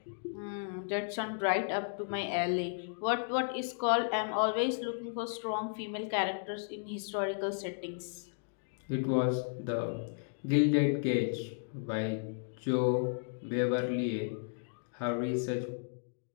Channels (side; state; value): right; silent; digital silence